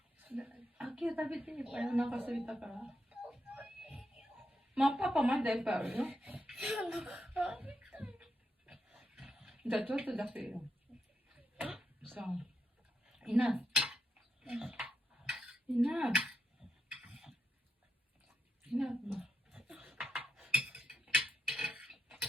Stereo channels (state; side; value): normal; both; correlation 0.84